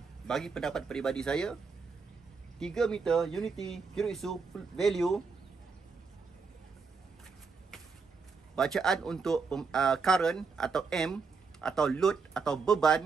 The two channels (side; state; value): left; quieter; 4.9 dB